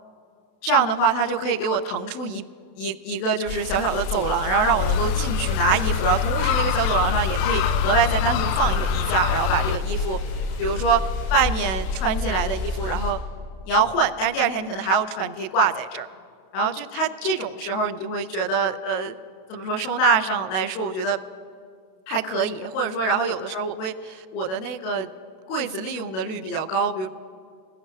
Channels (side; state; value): right; late; 32 ms